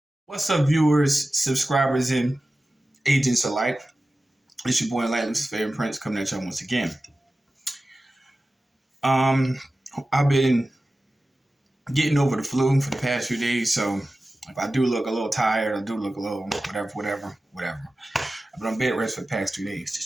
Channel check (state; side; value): normal; both; correlation 0.95